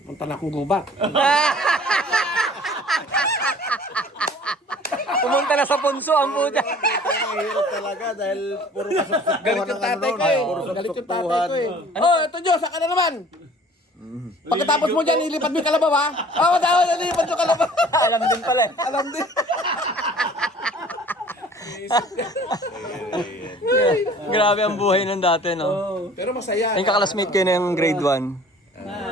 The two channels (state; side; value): normal; both; correlation 0.50